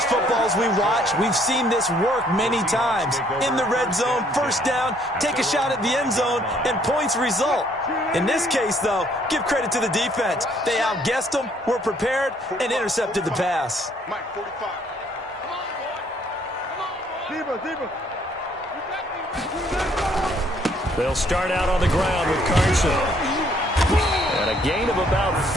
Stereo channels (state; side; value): normal; both; correlation 0.64